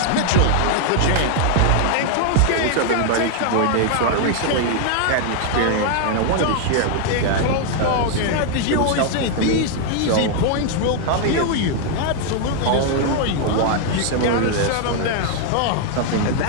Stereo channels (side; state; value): both; different; correlation 0.00